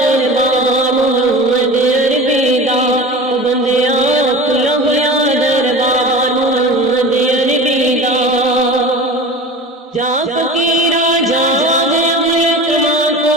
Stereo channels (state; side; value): normal; both; correlation 0.34